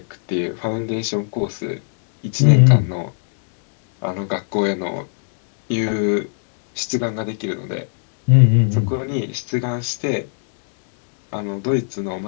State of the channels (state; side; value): silent; right; digital silence